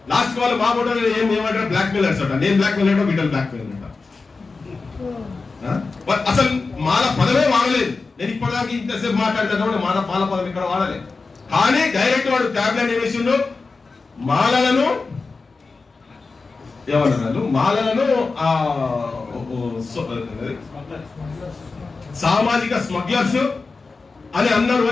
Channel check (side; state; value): right; quieter; 4.1 dB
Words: లాస్ట్ వాళ్ళు మా ఫోటో ఏమంటారు, బ్లాక్ మెయిలర్స్ అంట. నేను బ్లాక్ మెయిల్ అంటే వీళ్ళు బ్లాక్ మెయిల్ అంట. అసలు మాల పదమే వాడలేదు. నేను ఇప్పటిదాకా ఇంతసేపు మాట్లాడితే మాల పదం ఇక్కడ వాడలేదు, కానీ డైరెక్ట్ వాడు ట్యాబ్లెట్ ఏమేసిండు, మాలలను ఏమన్నారు, మాలలను సామాజిక స్మగ్లర్స్ అని అన్నారు